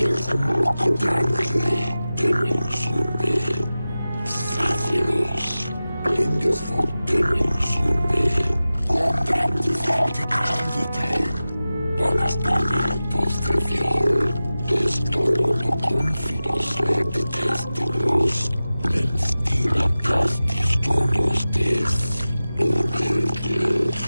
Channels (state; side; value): inverted; both; correlation -0.95